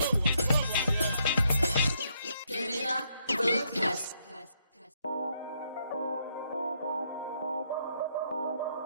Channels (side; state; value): both; inverted; correlation -0.75